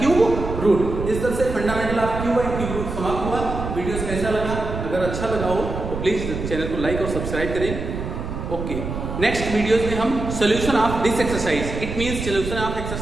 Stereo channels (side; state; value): right; noise; rumble, 6 dB below the sound